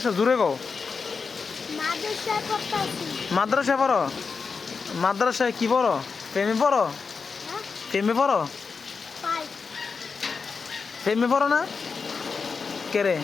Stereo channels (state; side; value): quieter; right; 5.1 dB